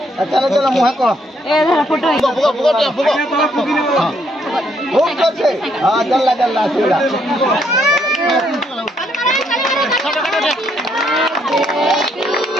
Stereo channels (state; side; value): normal; both; correlation 0.71